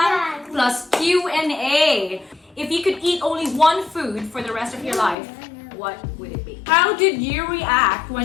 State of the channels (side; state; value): right; drops out; at 5.2 s